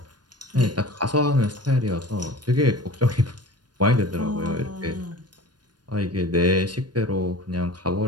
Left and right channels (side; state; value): left; late; 0.70 ms